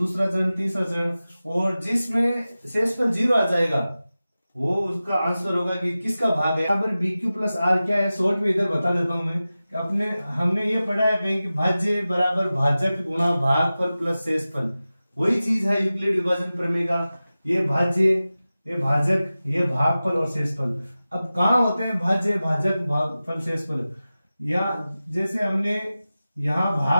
चरण, तीसरा चरण, और जिसमें शेषफल 0 आ जाएगा वो उसका आंसर होगा कि किसका भाग है। यहाँ पर BQ प्लस आर क्या है, शॉर्ट में इधर बता देता हूं मैं कि हमने ये पढ़ा है कहीं कि भाज्य बराबर भाजक गुणा भागफल प्लस शेषफल। वही चीज है यूक्लिड विभाजन प्रमेय का। ये भाज्य, ये भाजक, ये भागफल और शेषफल। अब कहाँ होते हैं भाज्य, भाजक, भागफल, शेषफल? या जैसे हमने यहां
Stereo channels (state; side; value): inverted; both; correlation -0.95